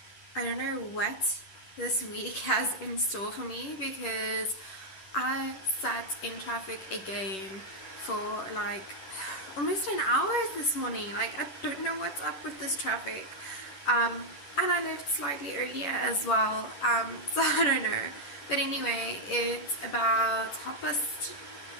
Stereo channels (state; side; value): late; right; 10 ms